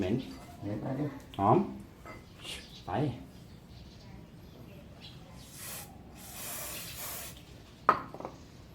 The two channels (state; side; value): identical; both; correlation 1.00